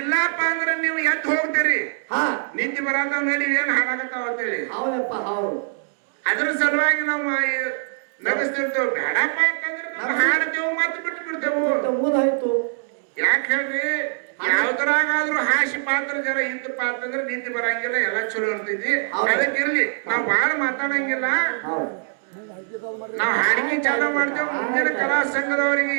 ಅಂದ್ರೆ ನೀವು ಎದ್ದು ಹೋಗ್ತೀರಿ ನಿದ್ದೆ ಬರತಾವ ನಡಿ ಏನ್ ಹಾಳಾಗತ್ತಾವ ಅಂತೇಳಿ ಅದ್ರ ಸಲುವಾಗಿ ನಾವು ನಗಿಸ್ತಿರ್ತೇವೆ ಬೇಡಪ್ಪ ಅಂತಂದ್ರೆ ನಾವು ಹಾಡ್ತೇವೆ ಮತ್ತೆ ಬಿಟ್ಟು ಬಿಡ್ತೇವೆ ಯಾಕೆ ಹೇಳ್ರಿ ಯಾವ್ದ್ರಾಗಾದ್ರೂ ಹಾಸಿ ಪಾತ್ರ ಜರ ಇಂತ ಪಾತ್ರ ಅಂದ್ರೆ ನಿಂತು ಬರಂಗಿಲ್ಲ ಎಲ್ಲ ಚಲೋ ಇರ್ತೈತಿ ಅದಕ್ಕಿರ್ಲಿ ನಾವ್ ಬಾಳ ಮಾತಾಡಂಗಿಲ್ಲ ನಾವ್ ಹಾಡಿಗೆ ಚಾಲ ಮಾಡ್ತೇವ್ ಮುಂದಿನ ಕಲಾ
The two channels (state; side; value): silent; left; digital silence